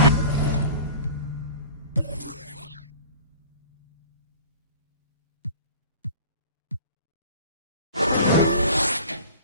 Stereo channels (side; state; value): both; inverted; correlation -0.42